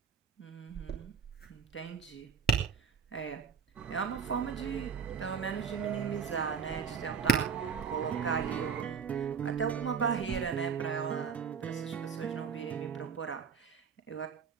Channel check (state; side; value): quieter; left; 6.4 dB